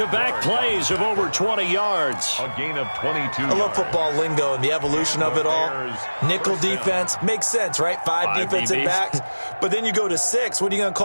plays of over 20 yards. A gain of 22. I love football lingo and the evolution of it all. Nickel defense makes sense, right? 5 defensive backs. But then you go to 6. What are you going to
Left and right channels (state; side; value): inverted; both; correlation -1.00